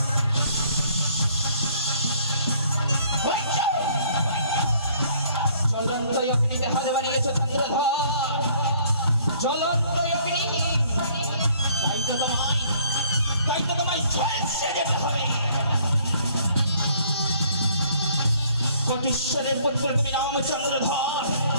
জ্বলন্ত অগ্নিতে হাত বাড়িয়েছ চন্দ্রধর, জ্বলন্ত অগ্নি। তাই তো তোমায় ঝলসে যেতে হবে। কোটিশ্বরের পুত্র তুমি নাম চন্দ্রধর,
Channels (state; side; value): inverted; both; correlation -0.60